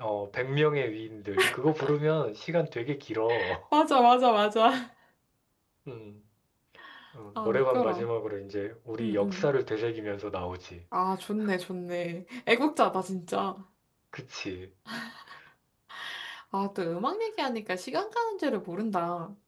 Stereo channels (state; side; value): identical; both; correlation 1.00